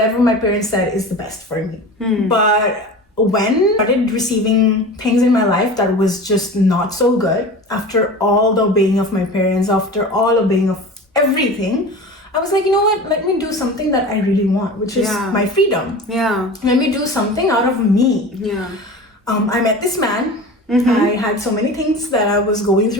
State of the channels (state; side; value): normal; both; correlation 0.34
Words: my parents said is the best for me. But when I started receiving things in my life that was just not so good, after all the obeying of my parents, after all obeying of everything, I was like, you know what? Let me do something that I really want, which is my freedom. Let me do something out of me. I met this man. I had so many things that I was going